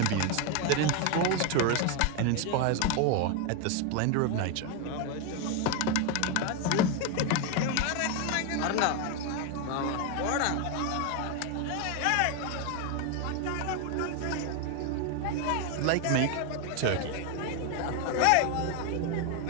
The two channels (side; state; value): both; different; correlation 0.01